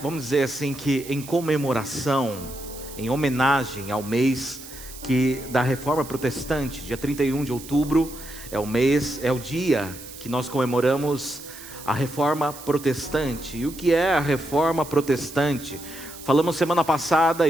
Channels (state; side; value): noise; right; hiss, 15 dB below the sound